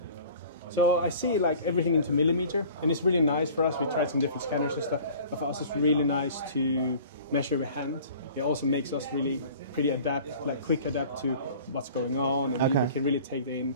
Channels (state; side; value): inverted; both; correlation -0.46